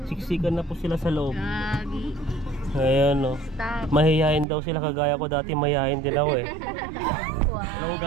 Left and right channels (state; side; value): drops out; left; at 4.5 s